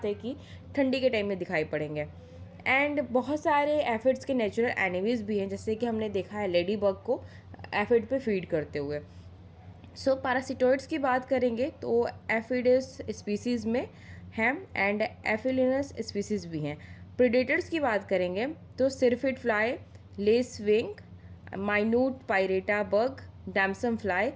है कि ठंडी के टाइम में दिखाई पड़ेंगे. एंड बहुत सारे एफिड्स के नेचुरल एनिमीज भी हैं जैसे कि हमने देखा है लेडी बग को एफिड पे फीड करते हुए. सो पैरासिटोइड्स की बात करेंगे तो एफिडस स्पीसीज़ में हैं एंड एफिलिनस स्पीसीज़ भी हैं. प्रीडेटर्स की बात करेंगे तो syrphid fly, lace wing, minute pirate bug, damsel fly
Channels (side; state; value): both; identical; correlation 1.00